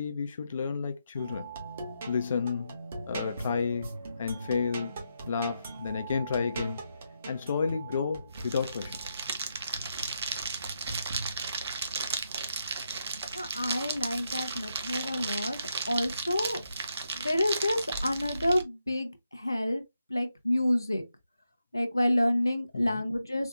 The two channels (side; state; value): both; inverted; correlation -0.84